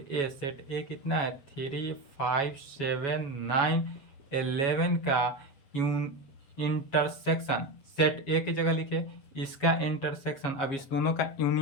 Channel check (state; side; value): late; right; 7.4 ms